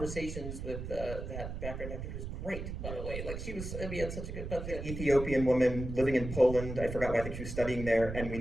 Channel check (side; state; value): right; noise; rumble, 6 dB below the sound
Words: with that background actor who's great, by the way. Like, we had such a good, but Ethiopian woman living in Poland. I forgot why. I think she was studying there, and we